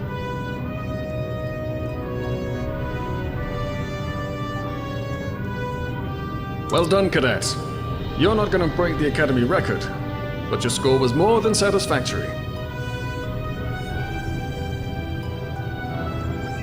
Well done, cadets. You're not going to break the Academy record, but your score was more than satisfactory.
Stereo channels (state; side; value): identical; both; correlation 1.00